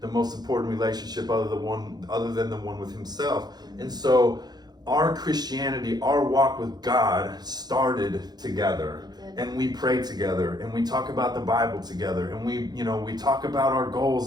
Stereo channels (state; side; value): late; left; 0.20 ms